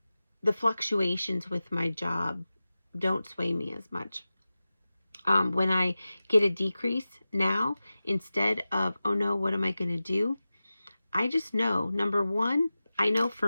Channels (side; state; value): both; inverted; correlation -0.95